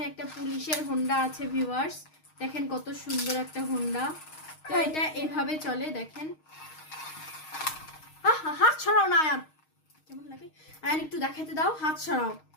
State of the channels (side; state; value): right; late; 6.4 ms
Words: একটা পুলিশের হোন্ডা আছে ভিউয়ার্স, দেখেন কত সুন্দর একটা হোন্ডা। তো এটা এইভাবে চলে দেখেন। হাত ছড়াও না আয়ান, কেমন লাগে? আয়ান একটু দেখাতে দাও, হাত ছড়াও